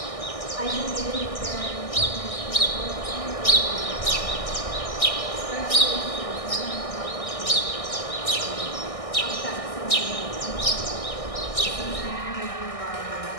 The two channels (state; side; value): late; right; 1.6 ms